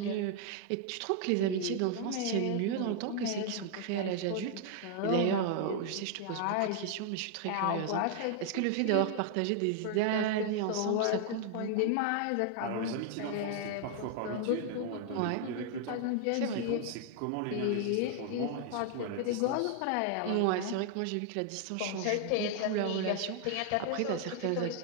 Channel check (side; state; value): both; different; correlation 0.00